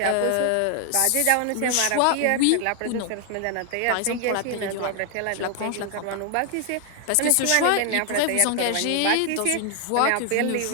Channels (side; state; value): both; different; correlation 0.00